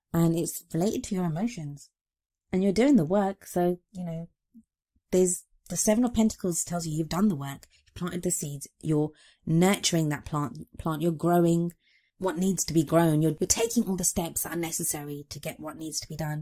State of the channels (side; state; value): both; identical; correlation 1.00